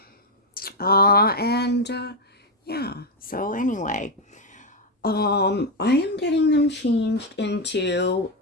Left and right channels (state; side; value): normal; both; correlation 0.05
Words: And yeah, so anyway, I am getting them changed into,